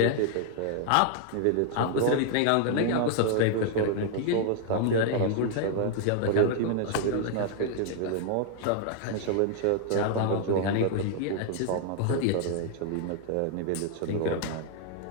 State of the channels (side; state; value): both; different; correlation 0.00